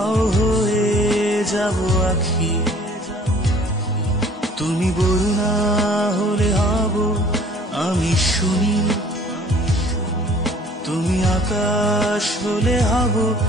হয়ে যাব আখি। তুমি বরুণা হলে হব আমি শুনি, তুমি আকাশ হলে হব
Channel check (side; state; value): both; normal; correlation 0.53